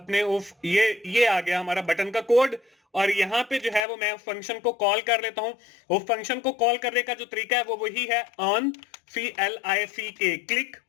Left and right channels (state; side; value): drops out; right; at 3.8 s